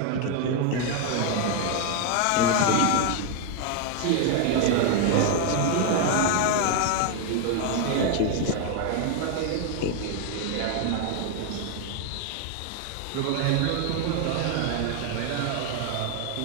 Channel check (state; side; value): different; both; correlation 0.01